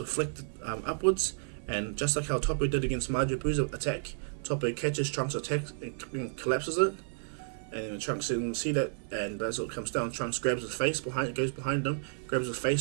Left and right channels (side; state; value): left; silent; 57 dB below the other